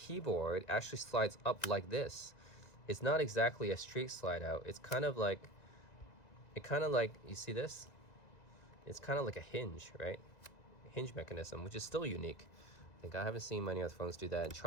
actually slides up like this. It's not exactly a straight slide out. It's kind of like, you see this? It's kind of like a hinge, right? A hinge mechanism, which is still unique. I think I haven't seen many other phones do that. It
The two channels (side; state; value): right; late; 2.0 ms